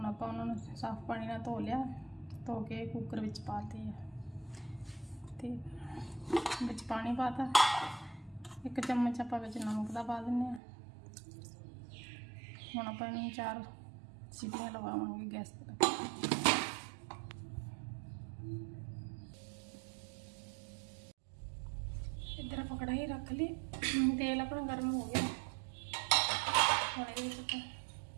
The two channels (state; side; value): drops out; left; at 10.6 s